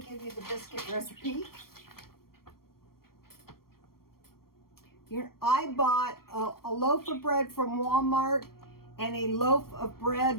give you the biscuit recipe. Here, I bought a loaf of bread from Walmart and a loaf of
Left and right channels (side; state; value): right; late; 0.93 ms